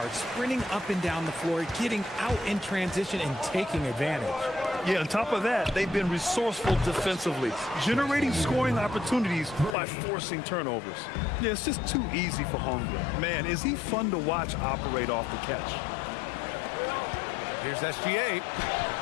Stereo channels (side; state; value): right; drops out; at 9.8 s